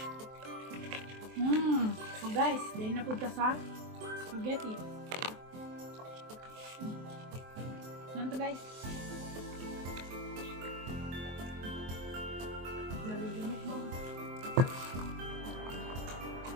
So guys, dahil na punta sa spaghetti. Yan to guys. Yan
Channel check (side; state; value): left; late; 23 ms